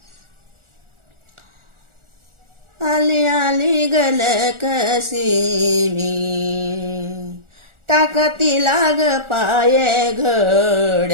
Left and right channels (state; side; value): late; left; 1.4 ms